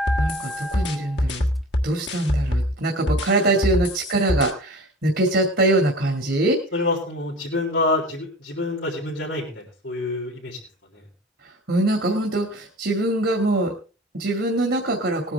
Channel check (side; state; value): both; normal; correlation 0.40